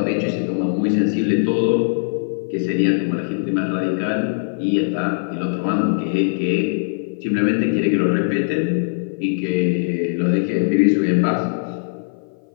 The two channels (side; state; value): right; silent; 56 dB below the other